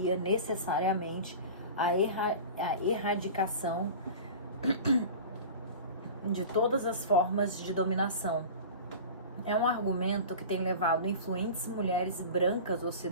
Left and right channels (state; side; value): inverted; both; correlation -0.35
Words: necessariamente à erradicação de todas as formas de dominação. É um argumento que tem levado influentes mulheres brancas